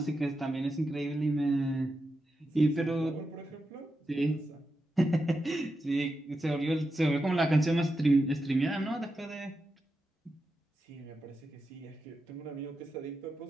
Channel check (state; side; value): normal; both; correlation 0.88